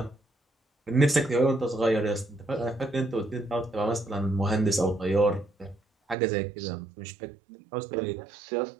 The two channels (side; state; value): left; drops out; at 6.2 s